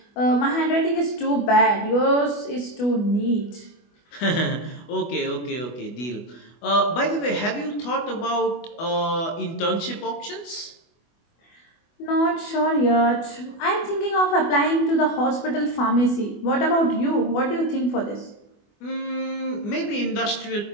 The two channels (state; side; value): late; right; 24 ms